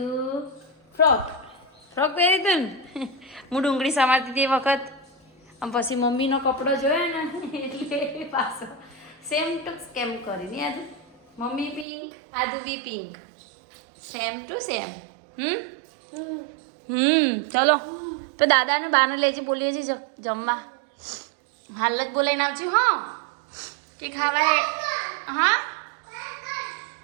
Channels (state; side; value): drops out; left; at 11.9 s